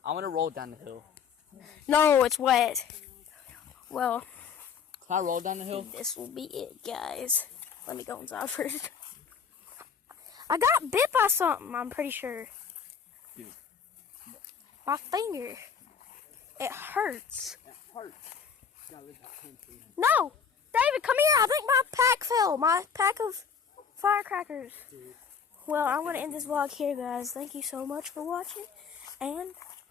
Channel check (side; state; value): right; quieter; 6.7 dB